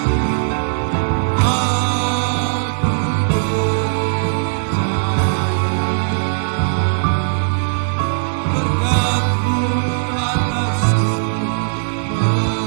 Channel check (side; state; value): left; silent; digital silence